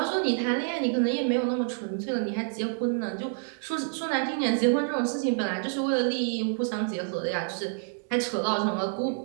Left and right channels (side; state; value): left; silent; digital silence